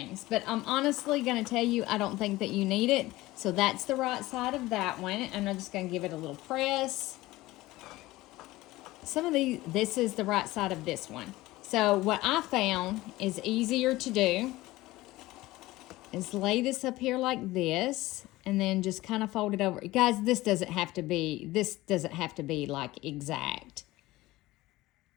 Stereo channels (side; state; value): right; quieter; 18.4 dB